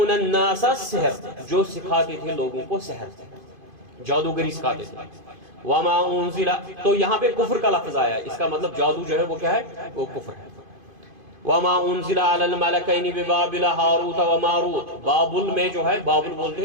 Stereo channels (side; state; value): left; late; 2.5 ms